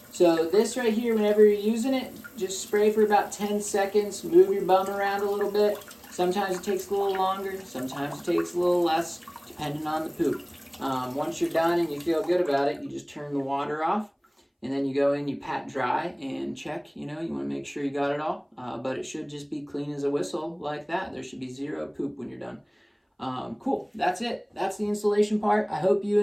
So this right here, whenever you're using it, just spray for about 10 seconds. Move your bum around a little bit. Sometimes it takes a little longer. Sometimes it takes a little less, depending on the poop. Once you're done and you feel good about it, you just turn the water off. And then you go in, you pat dry and check. You know, you want to make sure you got it all. But it should just be clean as a whistle like that. There should be zero poop when you're done. Cool. That's it. That's the installation part. I hope you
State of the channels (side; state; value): both; identical; correlation 1.00